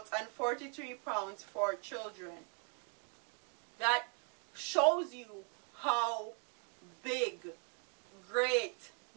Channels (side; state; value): left; quieter; 34.6 dB